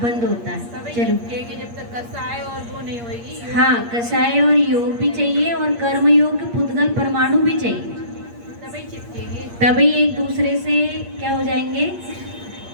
बंद होता है। चलो, जब तक कसाय और वो नहीं होगी। हाँ, कषाय और योग भी चाहिए और कर्म योग पुद्गल परमाणु भी चाहिए, तभी चिपकेंगे। तभी एक दूसरे से क्या हो जाएंगे?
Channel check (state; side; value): late; left; 8.5 ms